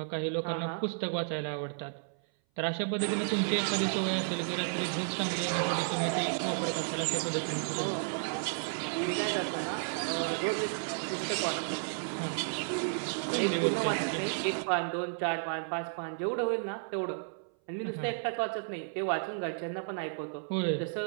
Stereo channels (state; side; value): silent; left; 56 dB below the other